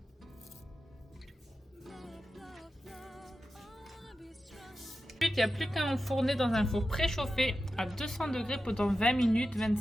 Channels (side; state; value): both; normal; correlation 0.92